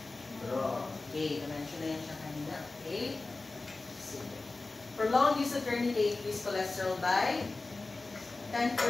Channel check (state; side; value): quieter; right; 3.4 dB